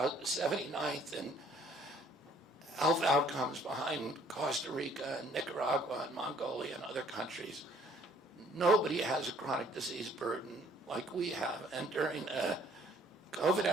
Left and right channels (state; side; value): normal; both; correlation 0.59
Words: 79th in health outcomes behind Costa Rica and Nicaragua and Mongolia and other countries. Nobody has a chronic disease burden like we have. And during the COVID